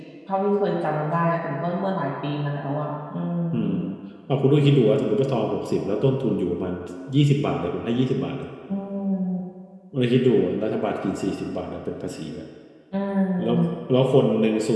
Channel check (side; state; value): both; identical; correlation 1.00